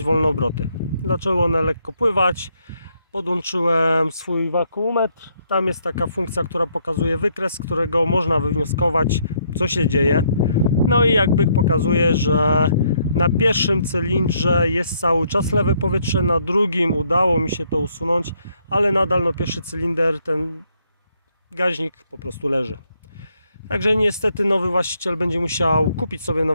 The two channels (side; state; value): both; inverted; correlation -0.71